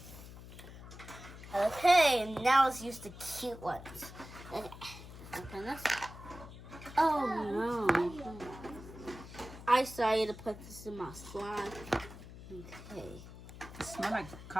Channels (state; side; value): noise; left; hum, 15 dB below the sound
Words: Okay, now let's use the cute ones. Okay, open this. Oh no. I decided to put this in my slime. Okay. It smells like